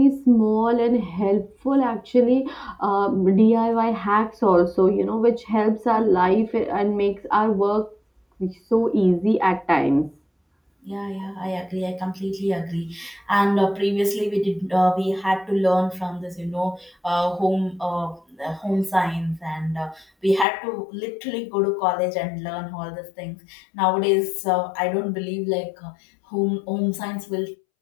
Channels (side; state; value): right; drops out; at 20.5 s